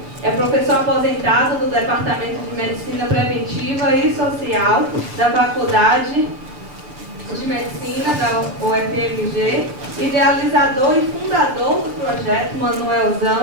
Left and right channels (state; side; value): late; left; 6.7 ms